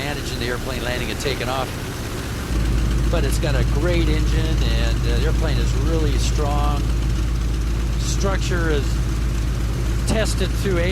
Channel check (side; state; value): both; identical; correlation 1.00